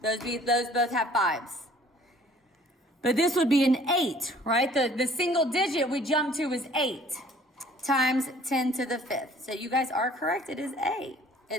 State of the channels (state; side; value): normal; both; correlation 0.54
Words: Those both have 5s. But this would be an 8, right? The single digit we jump to is 8 times 10 to the 5th. So you guys are correct. It is A.